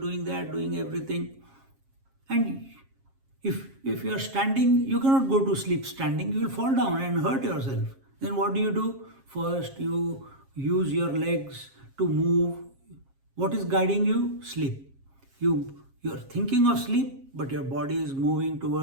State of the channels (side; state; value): left; late; 7.4 ms